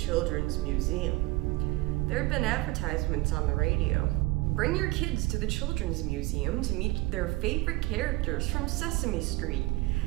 Museum. There have been advertisements on the radio. Bring your kids to the Children's Museum to meet their favorite characters from Sesame Street.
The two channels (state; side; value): quieter; left; 20.8 dB